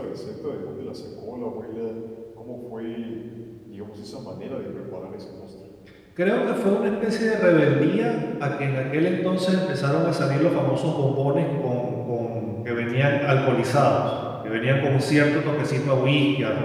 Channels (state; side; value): identical; both; correlation 1.00